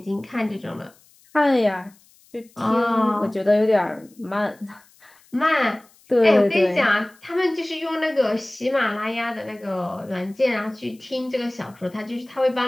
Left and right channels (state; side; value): noise; left; hiss, 30 dB below the sound